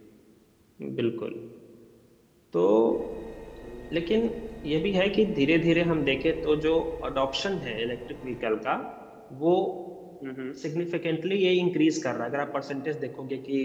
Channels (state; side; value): identical; both; correlation 1.00